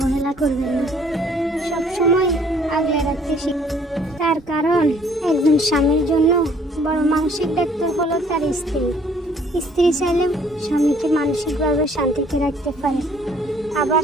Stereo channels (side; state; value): both; normal; correlation 0.60